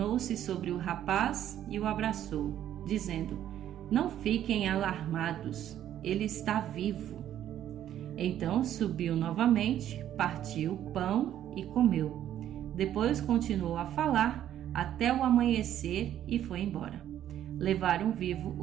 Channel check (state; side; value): quieter; left; 11.3 dB